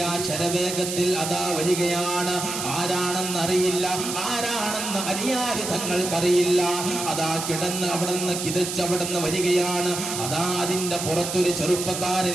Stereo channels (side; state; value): right; noise; hiss, 5 dB below the sound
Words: ശരവേഗത്തിൽ അതാ വരികയാണ്. ആരാണെന്നറിയില്ല, ആരാണെന്ന് അലിയാര് തങ്ങൾക്കറിയില്ല. അതാ കിടന്ന് അവിടുന്ന് കിതച്ച് അവിടുന്ന് വരികയാണ്. അതാ അതിന്റെ പുറത്തൊരു